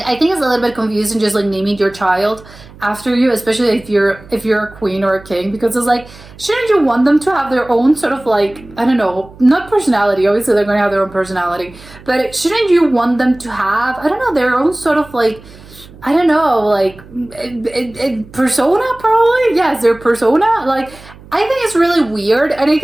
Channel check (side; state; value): right; noise; hum, 21 dB below the sound